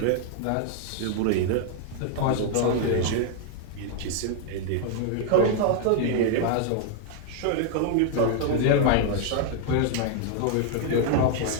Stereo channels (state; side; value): different; both; correlation 0.00